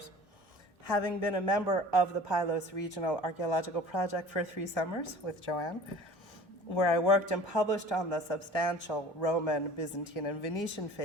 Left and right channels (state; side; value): normal; both; correlation 0.45